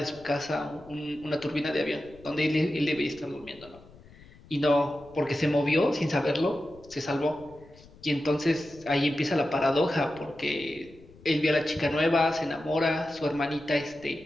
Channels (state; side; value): noise; left; rumble, 23 dB below the sound